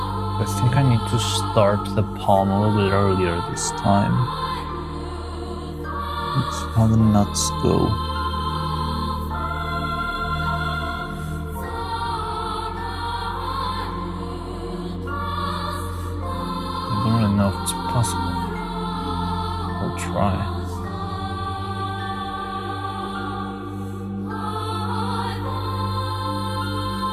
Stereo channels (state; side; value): identical; both; correlation 1.00